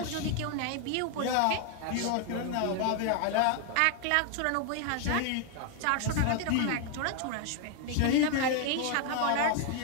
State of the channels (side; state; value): both; different; correlation 0.00